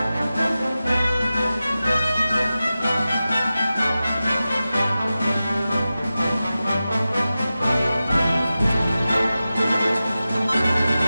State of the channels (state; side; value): inverted; both; correlation -0.94